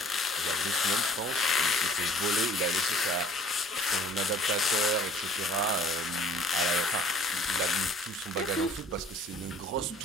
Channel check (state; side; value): normal; both; correlation 0.52